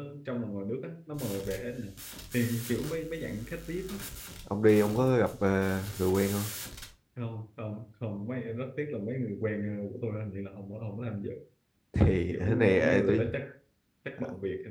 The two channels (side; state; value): both; identical; correlation 1.00